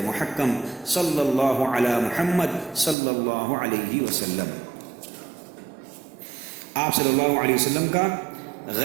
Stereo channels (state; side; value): drops out; left; at 3.0 s